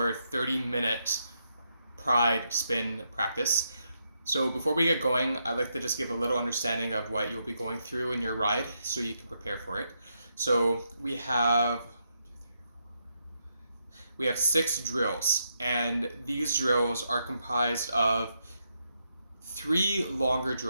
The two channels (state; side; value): inverted; both; correlation -0.80